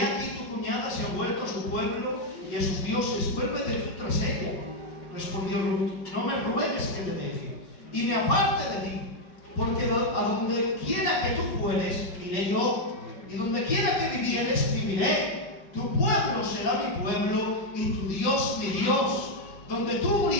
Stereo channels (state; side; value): late; right; 5.5 ms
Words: tu cuñada se ha vuelto a su pueblo y a sus dioses, vuélvete tú tras ella. Respondió Ruth: no me ruegues que te deje y me aparte de ti, porque a donde quiera que tú fueres, iré yo, y donde quiera que vivieres, viviré. Tu pueblo será mi pueblo y tu Dios mi Dios. Donde tú